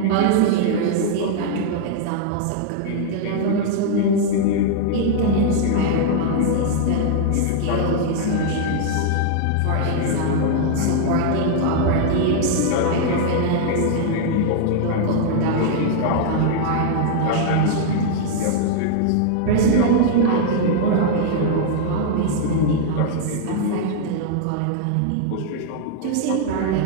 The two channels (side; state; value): both; different; correlation -0.01